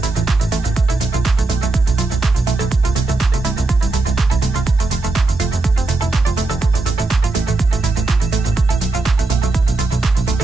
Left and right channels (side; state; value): left; quieter; 3.2 dB